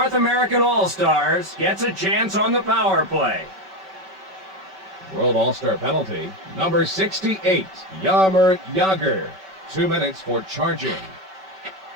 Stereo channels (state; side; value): late; left; 5.2 ms